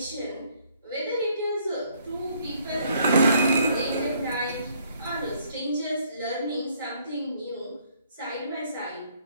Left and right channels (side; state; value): both; inverted; correlation -0.66